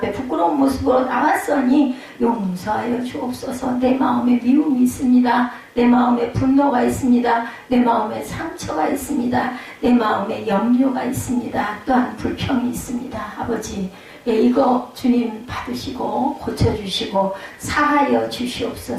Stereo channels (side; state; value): both; identical; correlation 1.00